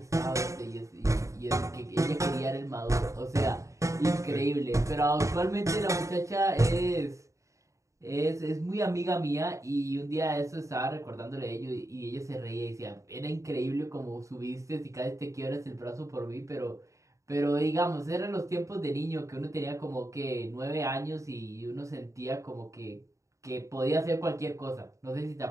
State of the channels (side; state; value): left; late; 0.15 ms